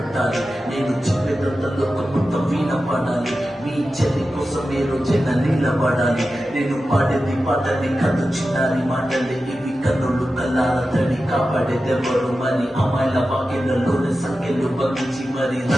నేను చెప్పేదంతా లోకం మొత్తం వీణ పాడాలి. మీ చెల్లి కోసం ఏ రోజైనా నిలబడాలి. నేను పాడేది పాటని కథ చిన్నారి మాటలే ఇవి, కన్నులు కల్లాల తడి కాపాడేదెవరు మరి? అమ్మాయిల వాకిళ్లలోని సంఖ్యలు బంధించి మరి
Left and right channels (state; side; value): normal; both; correlation 0.93